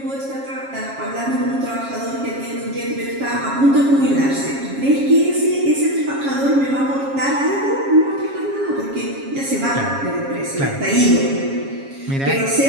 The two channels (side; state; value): left; late; 7.3 ms